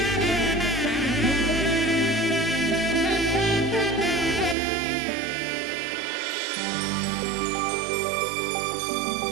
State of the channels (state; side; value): drops out; left; at 4.5 s